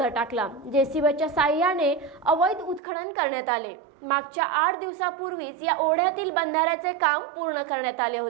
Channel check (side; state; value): left; drops out; at 2.8 s